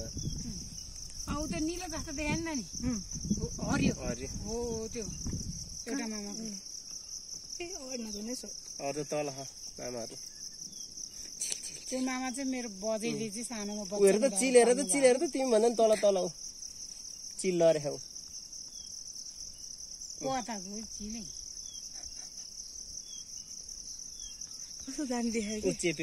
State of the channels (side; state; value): both; identical; correlation 1.00